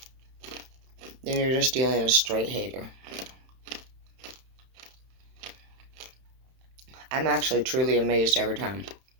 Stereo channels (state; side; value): late; left; 31 ms